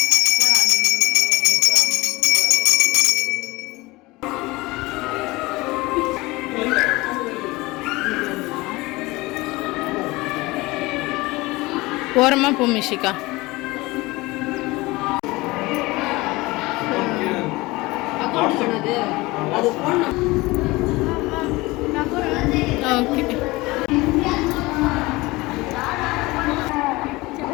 ஓரமாக போ மிஷிகா. ஓகே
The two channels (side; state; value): right; quieter; 21.6 dB